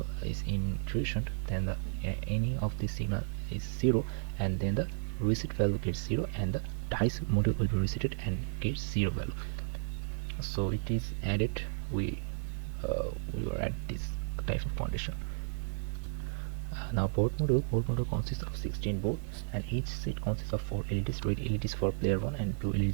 is intrusioned, then any of the signal is 0, and then the reset value gets 0, and the dice module will be resetted and gets 0 value. So it is added. We will add this type of condition. Now port module consists of 16 boards, and each seat consists of 4 LEDs, red LEDs for player 1 and 2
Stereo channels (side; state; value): left; silent; digital silence